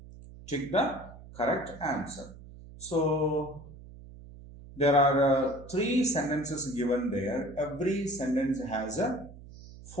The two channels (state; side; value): noise; right; hum, 17 dB below the sound